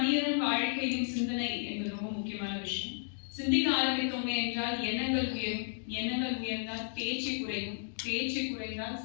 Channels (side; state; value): right; silent; digital silence